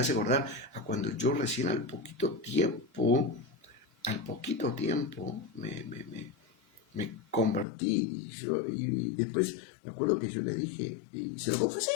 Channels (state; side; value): drops out; right; at 7.7 s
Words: acordar a cuando yo recién al poquito tiempo, me convertí, y después me acuerdo que yo le dije, y se lo confesé,